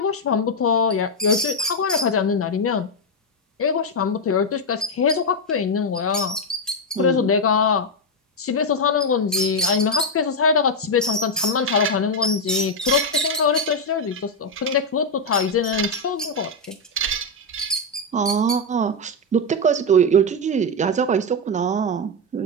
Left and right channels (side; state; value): both; normal; correlation 0.03